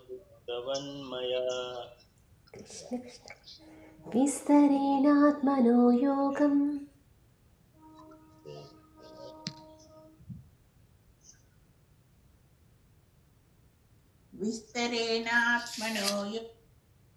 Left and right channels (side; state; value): both; identical; correlation 1.00